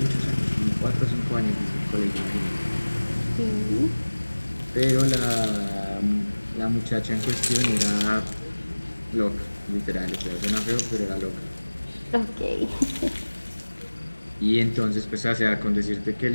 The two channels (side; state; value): both; inverted; correlation -1.00